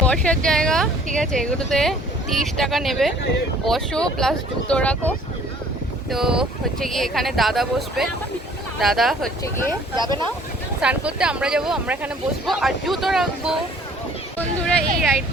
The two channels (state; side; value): normal; both; correlation 0.55